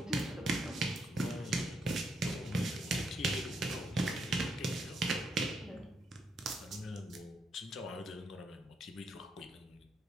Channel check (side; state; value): both; normal; correlation 0.77